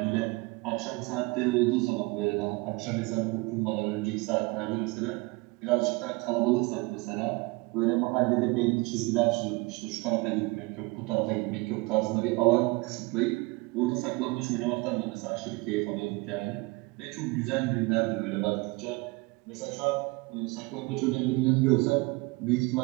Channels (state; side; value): quieter; left; 24.9 dB